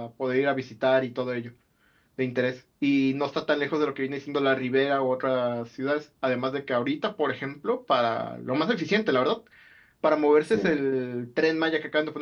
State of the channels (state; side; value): identical; both; correlation 1.00